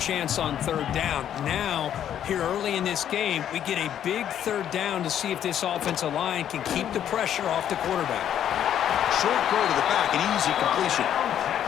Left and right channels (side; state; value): right; quieter; 10.1 dB